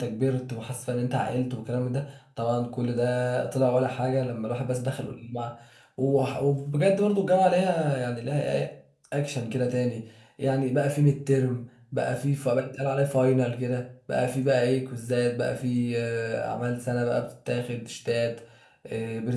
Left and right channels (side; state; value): both; identical; correlation 1.00